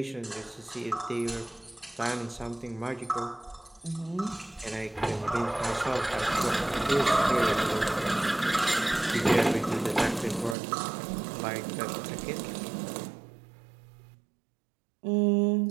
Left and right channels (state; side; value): drops out; left; at 10.6 s